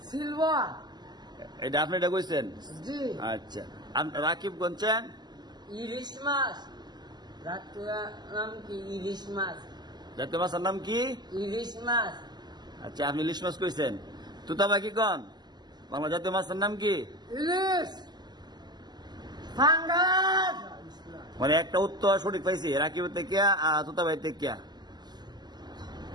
সিলভার। এটা আপনি এটা কইছেন? জি। আচ্ছা, রাকিব কোনছেন? ইলিশ মাছ। জাতীয় নাম কি? ইলিশ মাছ। জাতীয় মাছের নাম কি? ইলিশ মাছ। আচ্ছা, আপনি ইলিশ মাছ কইছেন। তুতাবা কি কোন? বাংলা জাতীয় মাছের নাম কি? ইলিশ। ফাঙ্গাস। মানে একটা উত্তর সঠিক পাইছি, রাকিব থেকে তুতাবাই থেকে।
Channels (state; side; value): late; left; 0.21 ms